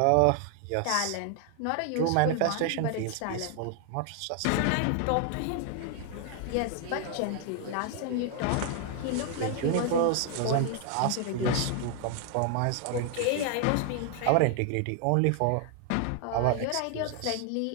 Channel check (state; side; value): different; both; correlation 0.00